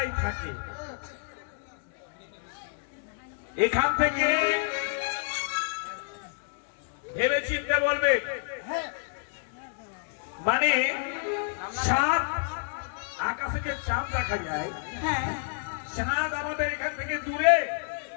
থাকে। এখান থেকে ভেবে চিন্তে বলবে। হ্যাঁ। মানে চাঁদ, আকাশে যে চাঁদ দেখা যায়, হ্যাঁ। চাঁদ আমাদের এখান থেকে দূরে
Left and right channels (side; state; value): right; silent; digital silence